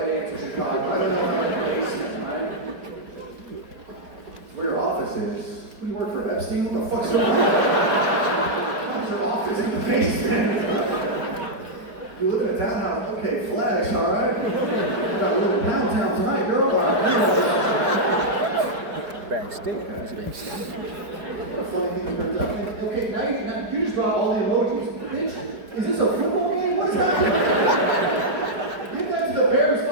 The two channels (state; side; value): late; left; 4.7 ms